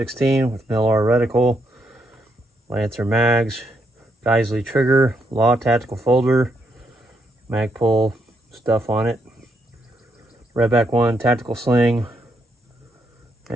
with MLR reticle, Lancer mags, Geissele trigger, Law tactical folder, Magpul stuff on it, Redback One tactical sling,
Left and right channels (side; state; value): both; normal; correlation 0.78